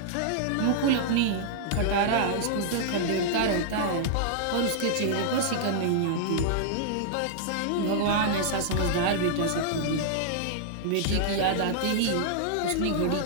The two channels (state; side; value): different; both; correlation -0.01